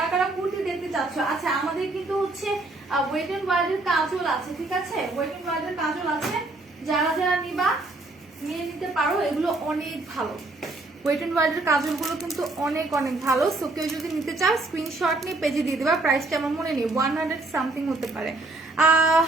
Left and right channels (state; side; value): quieter; left; 3.1 dB